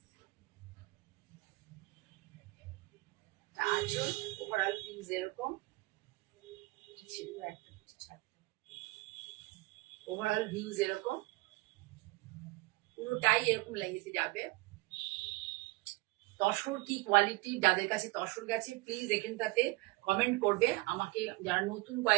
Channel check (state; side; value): quieter; left; 21.9 dB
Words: আঁচল ওভারঅল ভিউজ এরকম ছিল, একটা ওভারঅল ভিউজ এরকম পুরোটাই এরকম লাগিয়ে যাবে। তসর কি কোয়ালিটি, যাদের কাছে তসর গেছে প্লিজ এখানটাতে কমেন্ট করবে আমাকে। যারা নতুন